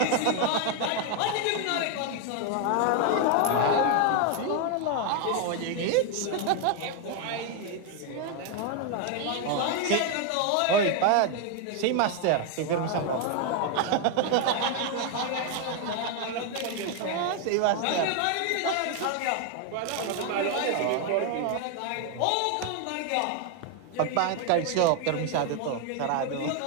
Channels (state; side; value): different; both; correlation 0.01